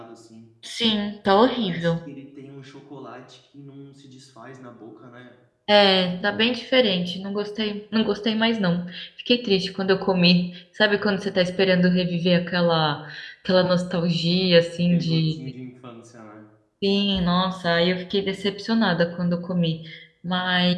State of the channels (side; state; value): both; identical; correlation 1.00